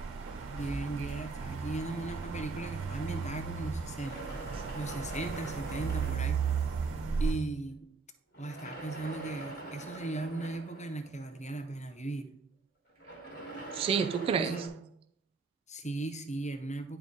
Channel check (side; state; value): left; quieter; 4.1 dB